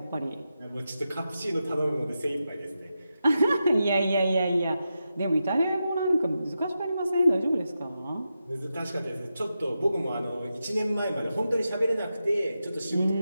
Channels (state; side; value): inverted; both; correlation -0.89